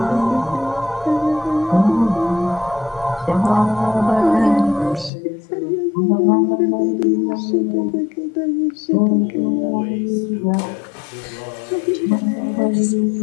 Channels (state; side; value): drops out; right; at 5.1 s